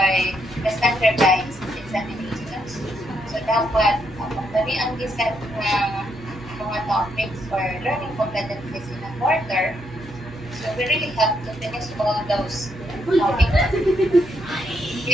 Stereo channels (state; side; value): normal; both; correlation 0.76